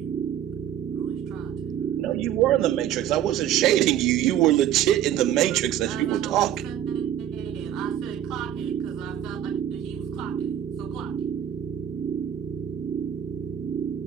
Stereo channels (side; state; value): left; quieter; 10.9 dB